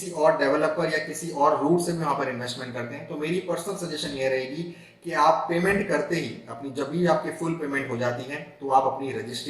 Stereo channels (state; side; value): identical; both; correlation 1.00